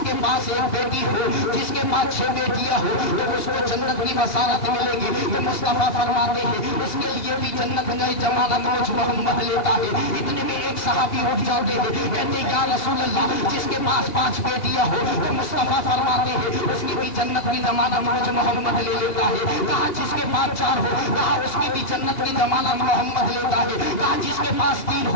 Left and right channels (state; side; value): late; right; 2.8 ms